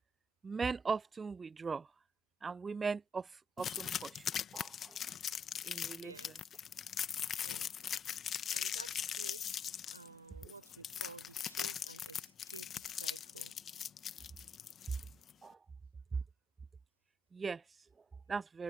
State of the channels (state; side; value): normal; both; correlation 0.75